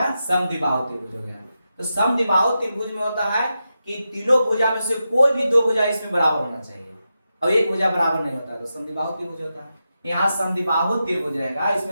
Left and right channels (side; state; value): both; inverted; correlation -0.89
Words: समद्विबाहु त्रिभुज हो गया। तो समद्विबाहु त्रिभुज में होता है कि तीनों भुजा में से कोई भी 2 भुजा इसमें बराबर होना चाहिए, और एक भुजा बराबर नहीं होता, तो समद्विबाहु त्रिभुज होता है। यहाँ समद्विबाहु त्रिभुज रहेगा,